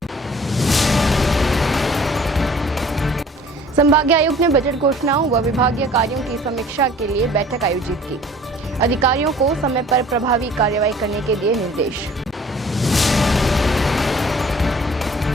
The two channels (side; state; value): both; normal; correlation 0.51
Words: संभागीय आयुक्त ने बजट घोषणाओं व विभागीय कार्यों की समीक्षा के लिए बैठक आयोजित की। अधिकारियों को समय पर प्रभावी कार्रवाई करने के दिए निर्देश।